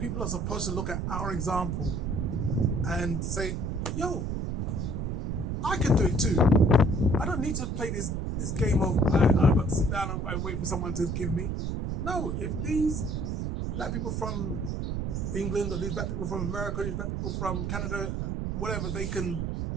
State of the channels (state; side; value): noise; right; rumble, 1 dB below the sound